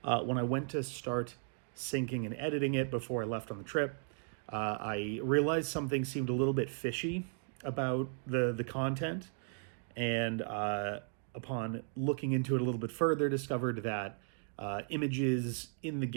when I went to start syncing and editing it before I left on the trip, I realized something seemed a little bit fishy about the content, and upon looking into it a little bit further, discovered that images in the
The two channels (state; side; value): silent; left; 54 dB below the other